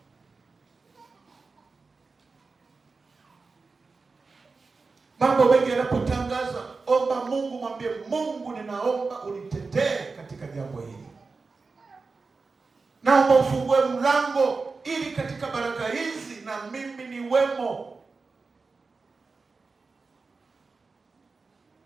Mambo mengi yanapotangazwa, omba Mungu, mwambie Mungu, ninaomba unitetee katika jambo hili. Naomba ufungue mlango ili katika baraka hizi na mimi niwemo.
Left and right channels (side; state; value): left; quieter; 4.2 dB